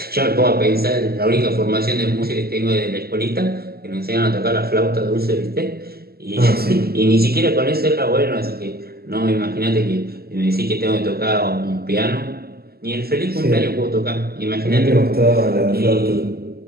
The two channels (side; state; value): left; late; 0.45 ms